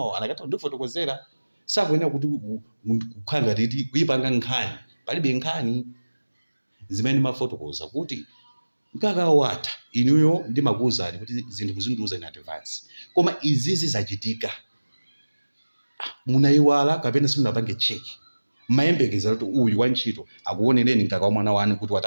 anakata ndifotokozera sakuyenera kuti kukhanga titi kuyipanga nkhani palibe nkhani zimene mafotokoza kuti mkaka watha inuyo ndimakuwuzani kuti zinthu muzindiuza in advance koma izizi zachitika munayiwala kapena simunapange cheki mayembekeza kuti uyu wantchito akuonereni mkaka wa mwana wanu kuti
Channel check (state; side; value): inverted; both; correlation -1.00